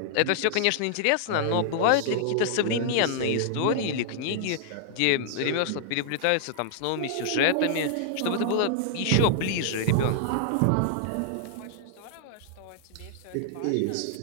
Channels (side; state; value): both; different; correlation -0.01